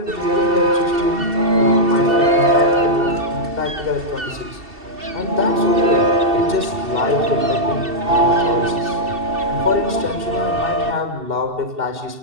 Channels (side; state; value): left; late; 2.7 ms